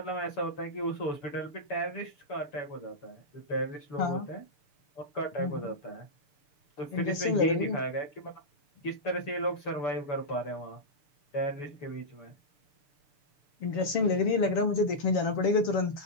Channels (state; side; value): late; right; 7.1 ms